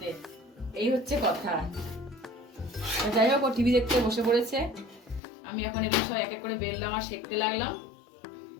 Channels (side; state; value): right; drops out; at 5.2 s